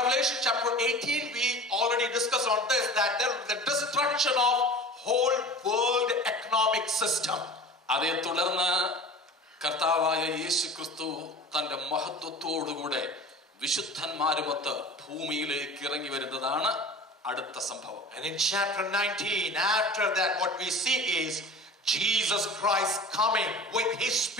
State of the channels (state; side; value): normal; both; correlation 0.38